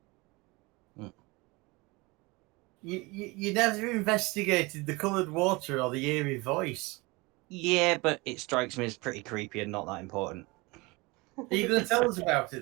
You never investigated the coloured water or the eerie voice. Yeah, but it strikes me as pretty creepy and not that important. Are you going to tell us about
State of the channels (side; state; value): left; quieter; 24.6 dB